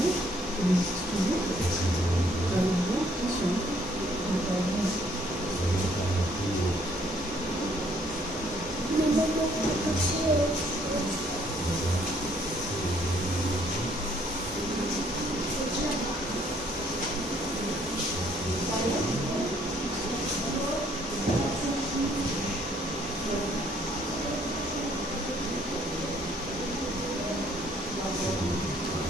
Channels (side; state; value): both; normal; correlation 0.64